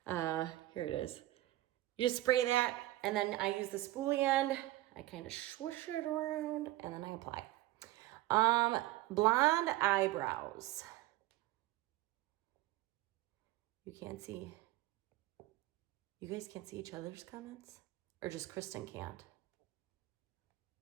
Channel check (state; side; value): quieter; left; 17.1 dB